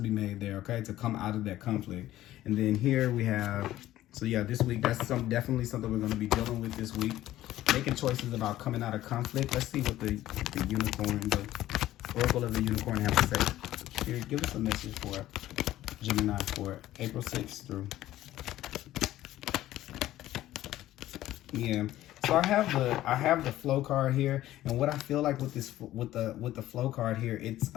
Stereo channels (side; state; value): right; quieter; 14.4 dB